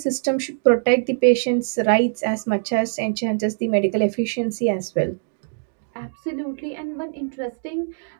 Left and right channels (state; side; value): silent; left; digital silence